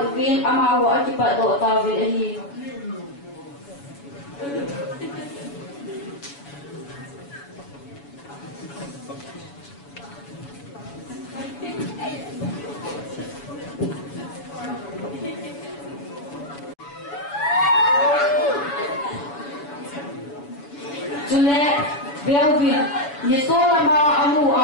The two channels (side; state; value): right; late; 7.1 ms